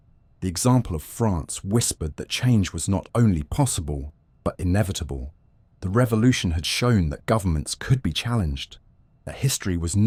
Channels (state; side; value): identical; both; correlation 1.00